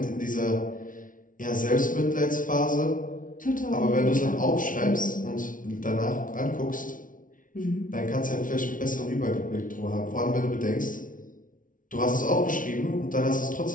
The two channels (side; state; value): right; late; 0.38 ms